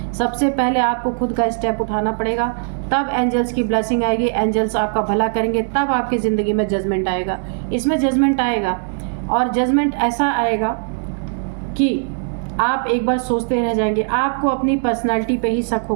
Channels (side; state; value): left; silent; digital silence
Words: सबसे पहले आपको खुद का स्टेप उठाना पड़ेगा, तब एंजल्स की ब्लेसिंग आएगी, एंजल्स आपका भला करेंगे, तब आपकी ज़िंदगी में जजमेंट आएगा। इसमें जजमेंट आएगा, और जजमेंट ऐसा आएगा कि आप एक बार सोचते रह जाएंगे। आपको अपनी पर्सनालिटी पे ही शक